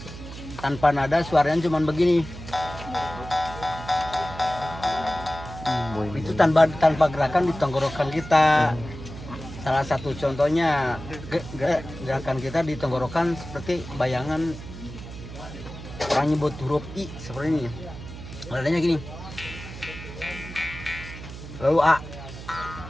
Tanpa nada suaranya cuma begini. Itu tanpa gerakan di tenggorokan kita. Salah satu contohnya gerakan kita di tenggorokan seperti bayangan orang nyebut huruf I seperti ini. Nadanya gini. Lalu A,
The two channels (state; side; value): noise; right; hum, 12 dB below the sound